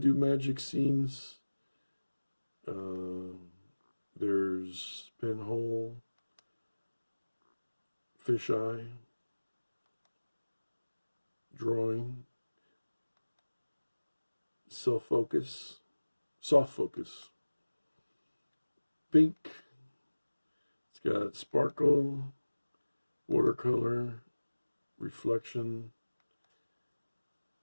do magic scenes. There's pinhole, fisheye, drawing, self-focus, soft focus, pink. It's got sparkle, watercolor, reflection,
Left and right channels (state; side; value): inverted; both; correlation -1.00